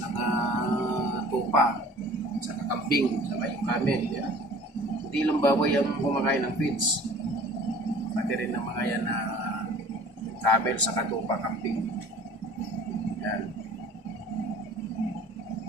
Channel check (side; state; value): both; normal; correlation 0.48